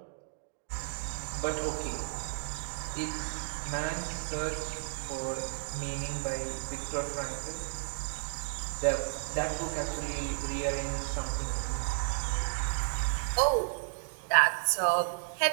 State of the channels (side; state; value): left; silent; digital silence